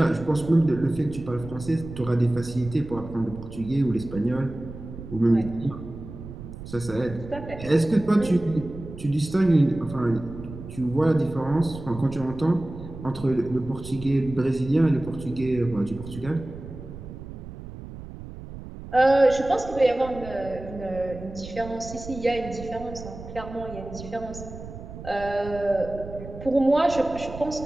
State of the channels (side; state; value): right; noise; rumble, 12 dB below the sound